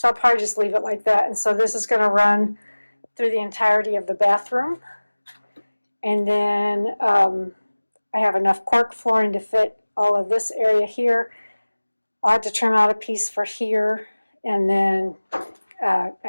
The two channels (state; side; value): inverted; both; correlation -1.00